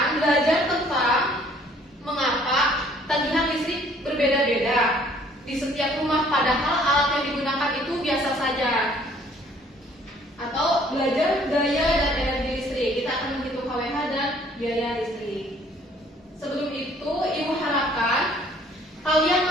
belajar tentang mengapa tagihan listrik berbeda-beda di setiap rumah, padahal alat yang digunakan itu biasa saja. Atau belajar daya dan energi listrik. Kita akan menghitung KWH dan biaya listrik. Sebelum itu, Ibu harapkan kalian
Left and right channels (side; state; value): both; normal; correlation 0.59